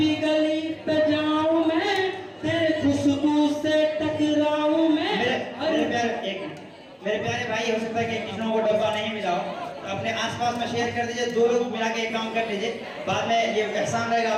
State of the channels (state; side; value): identical; both; correlation 1.00